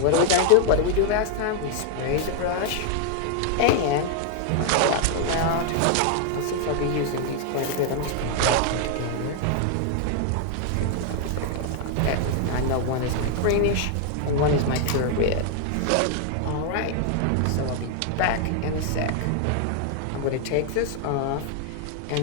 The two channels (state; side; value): different; both; correlation 0.00